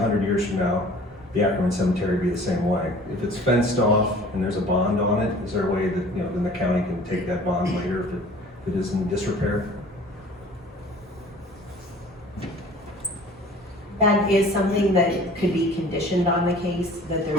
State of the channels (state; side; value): normal; both; correlation 0.47